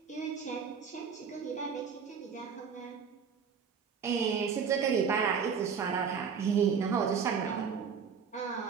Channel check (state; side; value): quieter; left; 6.5 dB